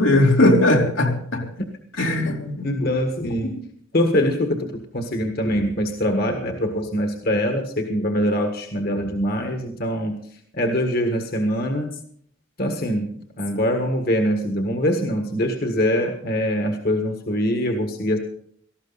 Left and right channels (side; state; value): both; normal; correlation 0.45